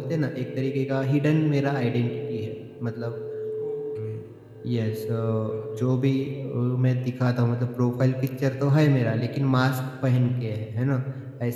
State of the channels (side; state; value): both; identical; correlation 1.00